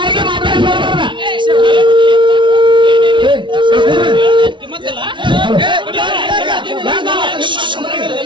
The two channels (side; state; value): left; late; 0.24 ms